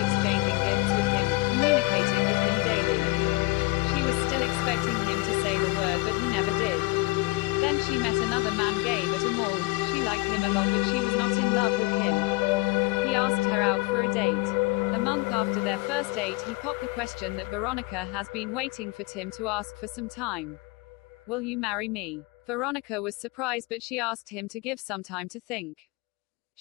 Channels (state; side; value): quieter; right; 23.0 dB